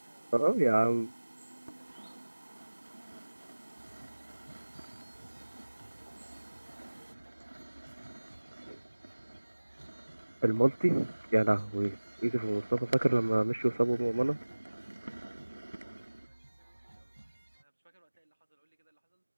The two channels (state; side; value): inverted; both; correlation -1.00